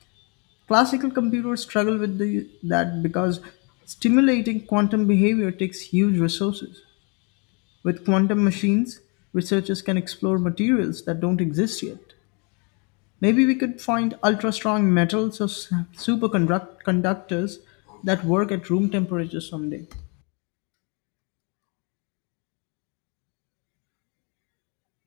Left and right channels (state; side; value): quieter; right; 33.6 dB